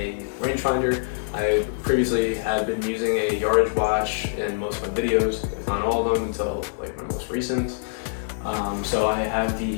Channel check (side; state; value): right; silent; digital silence